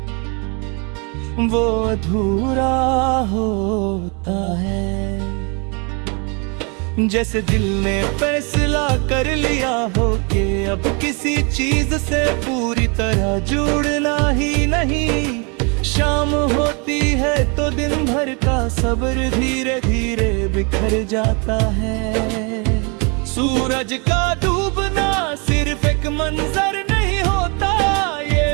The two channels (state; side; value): quieter; left; 33.2 dB